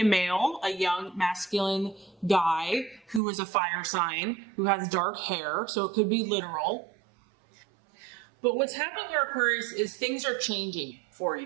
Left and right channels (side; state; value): left; drops out; at 3.2 s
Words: male, a young masculine guy who is a fire sign, who has dark hair. So it could be literal. But what's happening here, Aquarius, is things are changing for